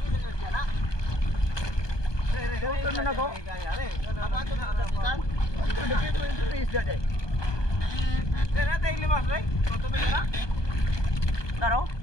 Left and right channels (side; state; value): right; late; 1.2 ms